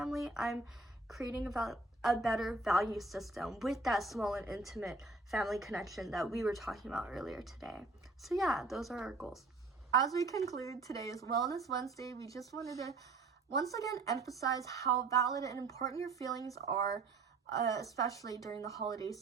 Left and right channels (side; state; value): left; quieter; 3.6 dB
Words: I'm creating a better value system with that small and intimate family connection that we were talking about earlier today. So yeah, those are our goals. As we conclude today's Wellness Wednesday, we just wanted to once again emphasize how valid and important your feelings are, especially during the holiday